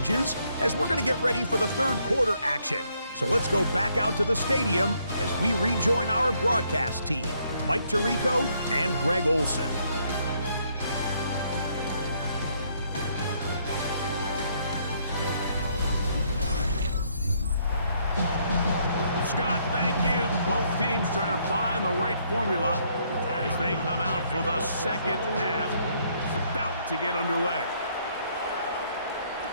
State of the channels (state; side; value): inverted; both; correlation -0.70